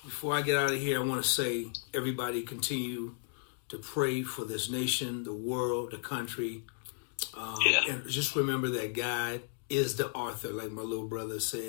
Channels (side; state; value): right; silent; digital silence